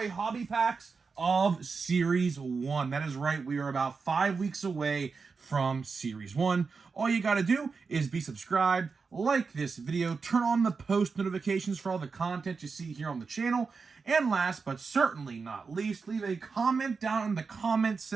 hobby packs of Series 1. That is right, we are about 5 weeks away from Series 1. All you gotta do is be subscribed, like this video, turn on the post notifications for all the content you see here on the channel, and last but certainly not least, leave a comment down in the comment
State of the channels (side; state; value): left; quieter; 4.9 dB